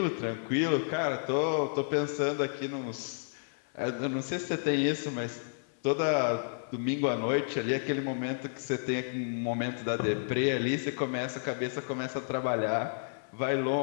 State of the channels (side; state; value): right; silent; 57 dB below the other